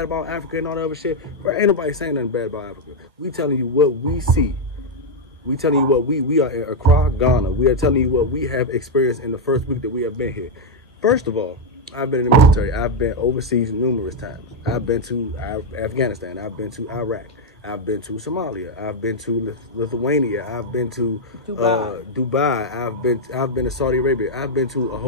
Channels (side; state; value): both; normal; correlation 0.00